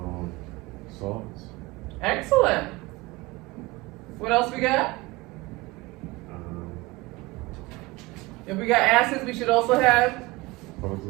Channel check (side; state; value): left; quieter; 21.7 dB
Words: Salts. Excellent. What else we got? If we got acids, we should also have?